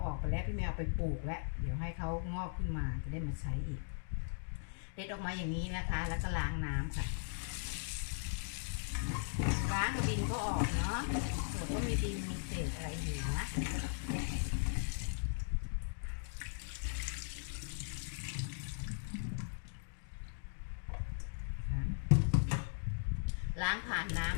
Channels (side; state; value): right; silent; digital silence